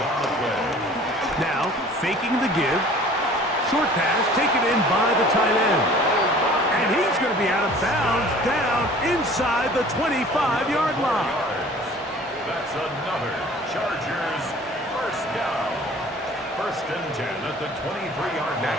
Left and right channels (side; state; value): both; normal; correlation 0.48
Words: on the play. Now, faking the give. Short pass taken in by the tight end. And he's going to be out of bounds down inside the 25-yard line. That's another Chargers first down. First and 10 at the 23-yard line.